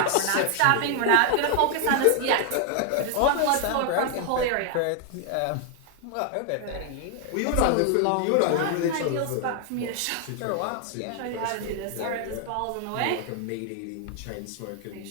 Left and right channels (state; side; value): different; both; correlation 0.00